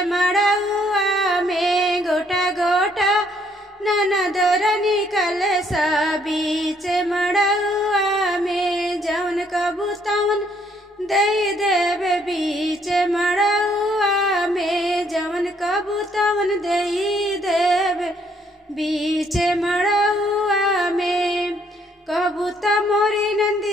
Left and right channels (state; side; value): normal; both; correlation 0.68